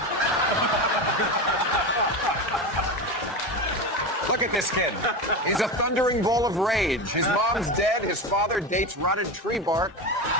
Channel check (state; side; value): normal; both; correlation 0.21